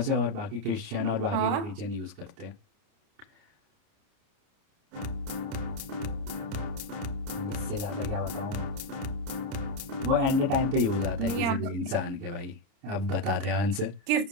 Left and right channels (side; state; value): left; late; 30 ms